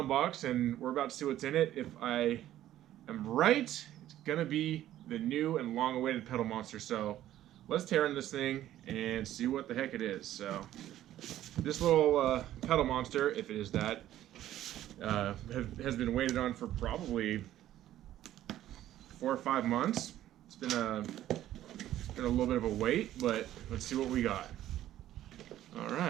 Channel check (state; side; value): quieter; left; 13.0 dB